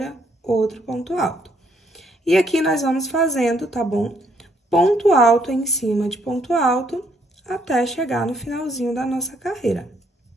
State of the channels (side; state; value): both; normal; correlation 0.70